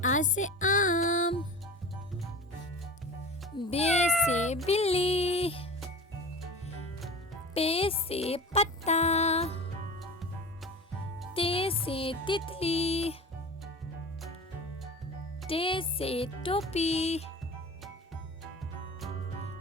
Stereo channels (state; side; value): normal; both; correlation 0.33